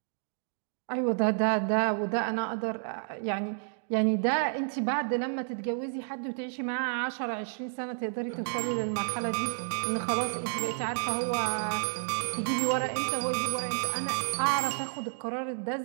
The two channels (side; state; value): left; silent; digital silence